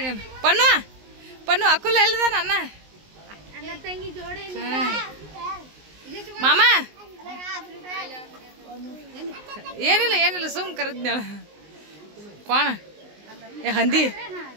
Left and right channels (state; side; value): late; left; 19 ms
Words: ಪಣ್ಣು ಪಣ್ಣು ಅಕ್ಕುಲ್ ಎಲ್ಲಿದಾನ ಅಣ್ಣ ಮಾಮ ಏನಿಲ್ಲ ಏನಿಲ್ಲ ಸುಮ್ ಕರೆದ್ನಾಳ ಕೋಣ ಏ ಹಂದಿ